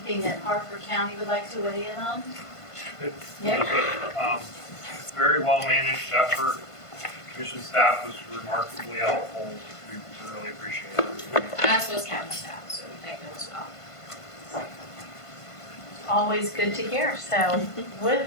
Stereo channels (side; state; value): right; late; 1.5 ms